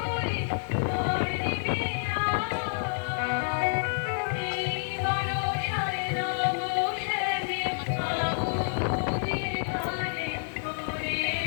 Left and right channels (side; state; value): right; silent; 59 dB below the other